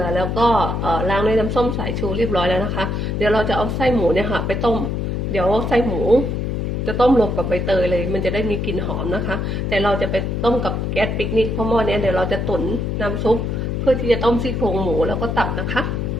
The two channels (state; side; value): noise; left; hum, 1 dB below the sound